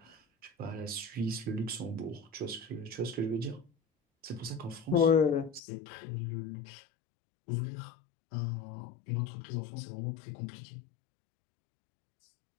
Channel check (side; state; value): right; drops out; at 5.6 s